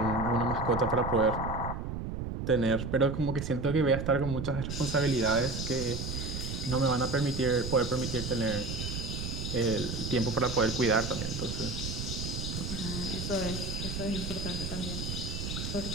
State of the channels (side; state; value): right; noise; rumble, 4 dB below the sound